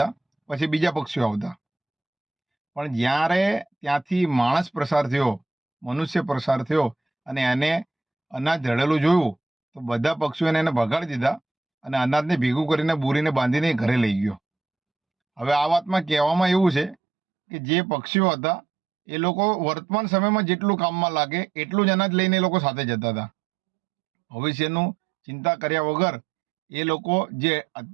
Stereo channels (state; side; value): drops out; left; at 16.9 s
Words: પછી બીજા પક્ષીઓ આવતા. પણ જ્યારે ત્યાંથી માણસ પ્રસાર થયો, મનુષ્ય પ્રસાર થયો અને એને અનાજ ઢળેલું જોયું તો બધા પક્ષીઓને એને ભગાડી દીધા અને અનાજને ભેગું કરીને બોરીને બાંધીને ઘરે લઈ ગયો. હવે આ વાતમાં કહેવામાં એવું છે કે જે પક્ષીઓ હતા એ લોકો વર્તમાન સમયમાં જેટલું કામમાં લાગે એટલું જ અનાજ લઈને એ લોકો સાથે જતા હતા. ભવિષ્યનું ચિંતા કર્યા વગર એ લોકો જે